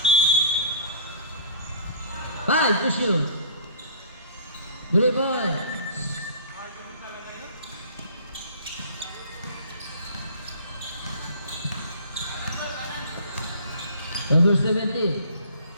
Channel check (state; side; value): inverted; both; correlation -0.47